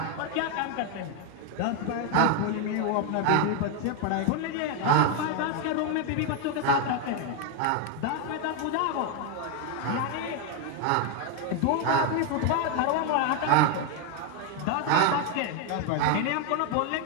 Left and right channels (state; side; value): different; both; correlation 0.01